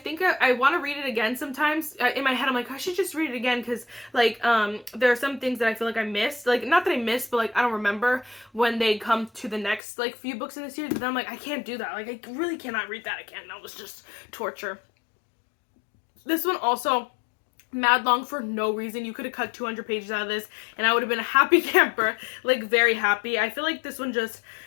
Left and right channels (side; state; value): right; drops out; at 9.8 s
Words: I want to read it again sometimes. In my head, I'm like, I should just read it again, because, like, there are some things that I feel like I missed, like, not that I missed, but, like, I don't remember when they come to the next, like, few books in the series, but then I'm like, I can't do that, like, I really cannot read that again. That was just torture. This one also mad long for no reason. You could have cut 200 pages out of this and I would have been a happy camper, like, very happy. I feel like this one just